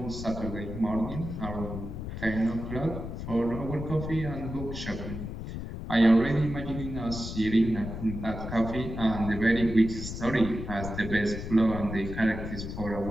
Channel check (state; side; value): noise; left; rumble, 7 dB below the sound